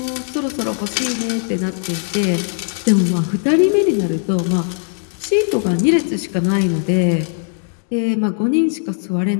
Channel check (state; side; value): silent; right; 60 dB below the other